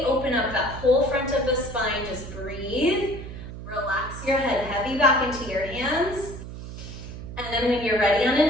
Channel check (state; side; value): noise; right; hum, 11 dB below the sound